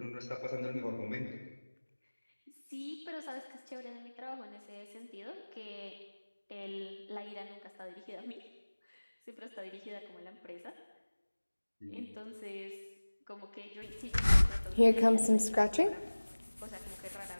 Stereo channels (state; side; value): inverted; both; correlation -1.00